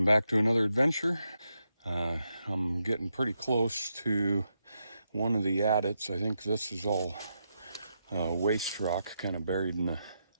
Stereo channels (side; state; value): both; inverted; correlation -0.84